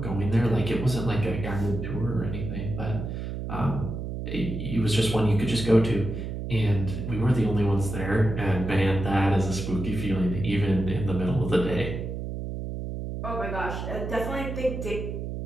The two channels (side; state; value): right; noise; hum, 5 dB below the sound